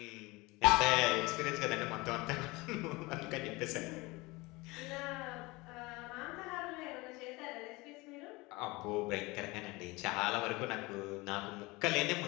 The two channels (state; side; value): quieter; right; 23.3 dB